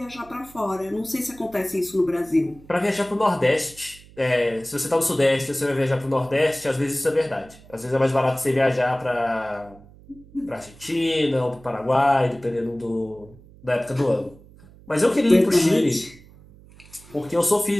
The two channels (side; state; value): right; noise; hum, 23 dB below the sound